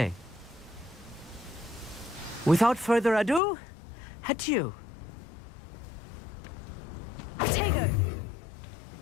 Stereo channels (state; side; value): drops out; right; at 3.4 s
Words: Without further ado, adieu. Potato!